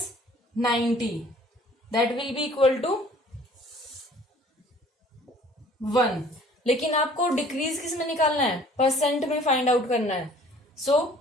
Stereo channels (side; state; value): both; normal; correlation 0.53